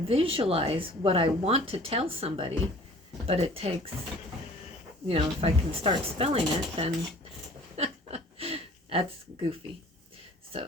visualize what I want to tell somebody, but it takes, if I can start spelling it, then that's goofy.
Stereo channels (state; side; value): normal; both; correlation 0.49